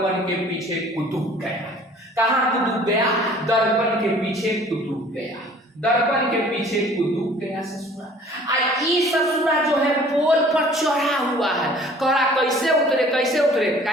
के पीछे कुतुब गया। कहां कुतुब गया, दर्पण के पीछे कुतुब गया, दर्पण के पीछे कुतुब गया ससुरा। ससुरा जो है पोल पर चढ़ा हुआ है, कहा कैसे उतरे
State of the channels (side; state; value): both; normal; correlation 0.51